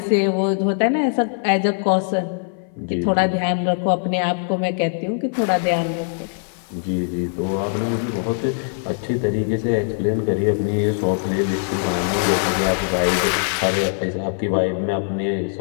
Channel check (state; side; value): silent; right; 56 dB below the other